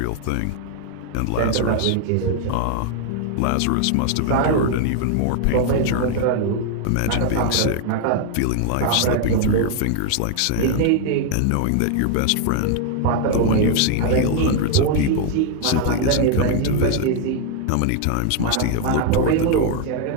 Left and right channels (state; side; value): different; both; correlation 0.00